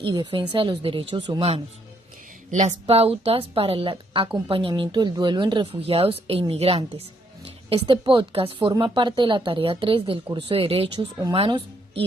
y defensa de los derechos humanos. Las pautas para el acompañamiento del duelo en refugiados e inmigrantes. Este podcast forma parte de la tarea 3 del curso de Derechos Humanos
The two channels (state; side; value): normal; both; correlation 0.72